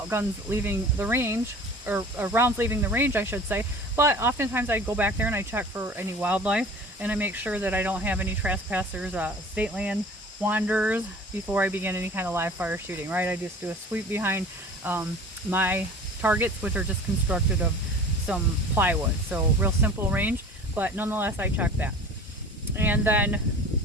guns leaving the range, or rounds leaving the range I should say, but oftentimes I go back there and I check for any wildlife, and I make sure that I don't have any trespassers, state land wanderers before I begin any kind of live fire shooting, right? I just do a sweep behind my targets, which are just constructed of some plywood, so real simple range, but nonetheless I check that. And then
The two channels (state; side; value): normal; both; correlation 0.42